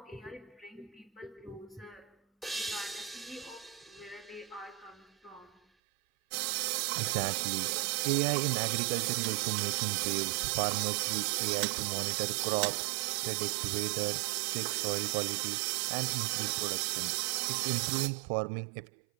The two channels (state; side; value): drops out; left; at 5.6 s